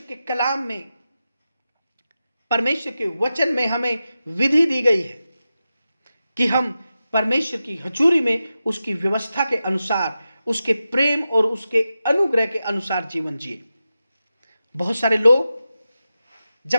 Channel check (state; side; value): inverted; both; correlation -0.92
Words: के कलाम में, परमेश्वर के वचन में हमें विधि दी गई है कि हम परमेश्वर की हजूरी में उसकी व्यवस्था के अनुसार, उसके प्रेम और उसके अनुग्रह के अनुसार जीवन जिए। बहुत सारे लोग